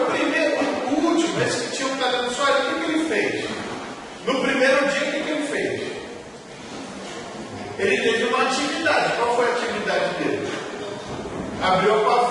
primeiro, o último, esse que tinha um talento só, o que ele fez? No primeiro dia, o que ele fez? Ele teve uma atividade. Qual foi a atividade dele? Abriu a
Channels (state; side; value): identical; both; correlation 1.00